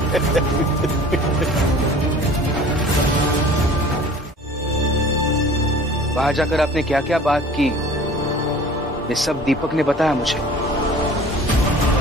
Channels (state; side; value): normal; both; correlation 0.46